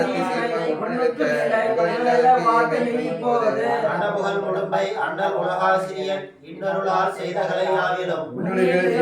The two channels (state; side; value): identical; both; correlation 1.00